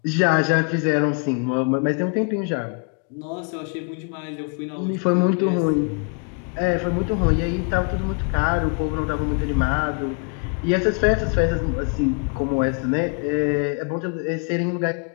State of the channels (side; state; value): right; quieter; 35.8 dB